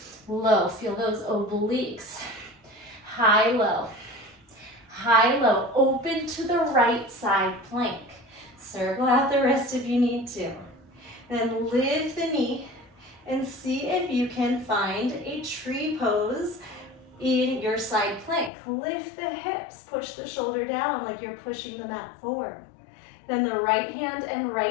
low, feel those obliques. High, low. High, low, open to the right side plank. Circle out the wrist if you need to. Then lift the knee and see if you can find a tree pose in your side plank. Lift the hips, push the shoulder down like you're pushing the mat forward. Then the right hand and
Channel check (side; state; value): right; drops out; at 18.5 s